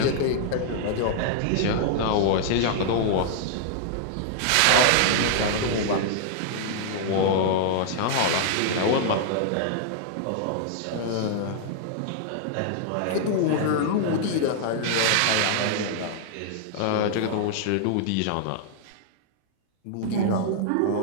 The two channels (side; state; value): both; different; correlation -0.01